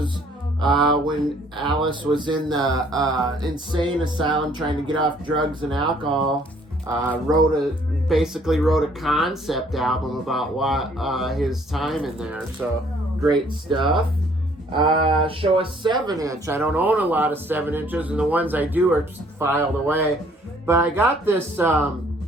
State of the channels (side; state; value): both; normal; correlation 0.61